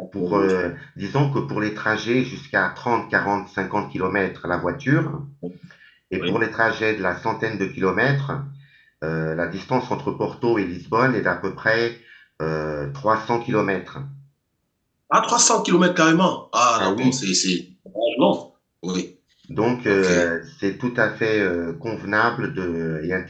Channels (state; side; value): identical; both; correlation 1.00